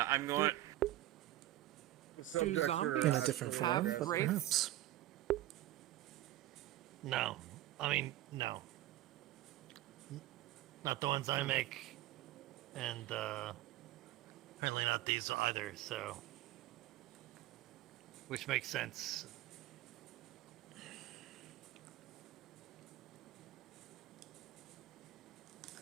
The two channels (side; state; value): left; quieter; 15.2 dB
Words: I'm going... Do zombies in a different form, but perhaps. No. I mean, no. Not the ones I make, and apparently not these either, so... Which makes sense.